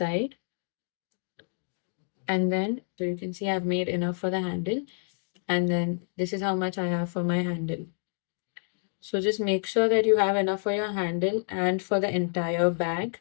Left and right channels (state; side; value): silent; right; digital silence